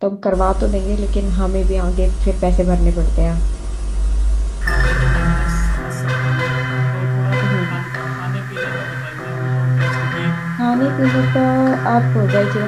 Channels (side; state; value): both; identical; correlation 1.00